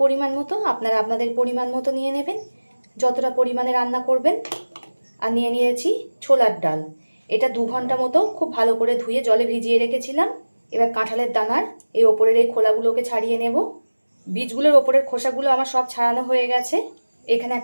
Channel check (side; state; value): both; inverted; correlation -1.00